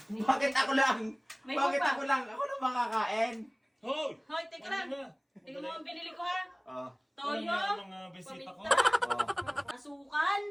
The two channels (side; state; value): both; identical; correlation 1.00